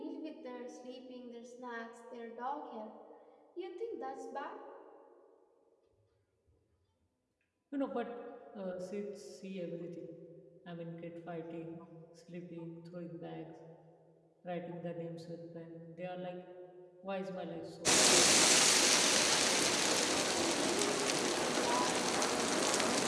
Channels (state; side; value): identical; both; correlation 1.00